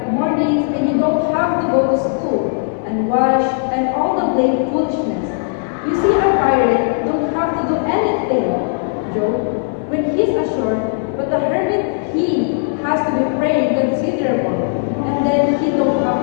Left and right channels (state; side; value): silent; right; 61 dB below the other